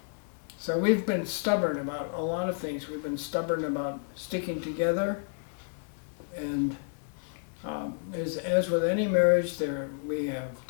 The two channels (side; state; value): right; silent; 57 dB below the other